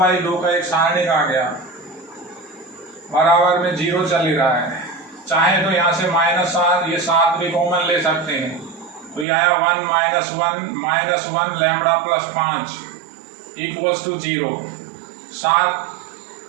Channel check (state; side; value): drops out; left; at 9.2 s